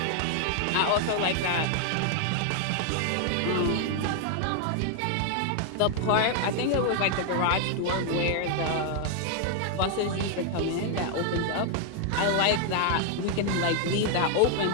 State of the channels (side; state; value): both; different; correlation 0.00